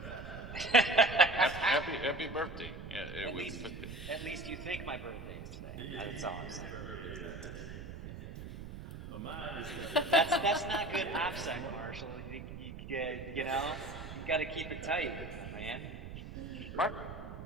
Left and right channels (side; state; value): right; noise; rumble, 10 dB below the sound